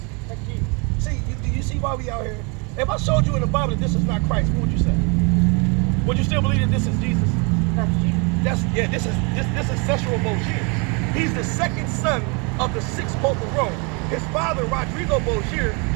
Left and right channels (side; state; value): left; quieter; 32.2 dB